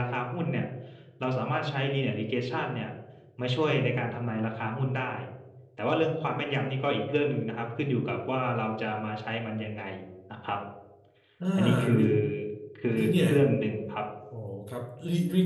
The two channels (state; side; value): identical; both; correlation 1.00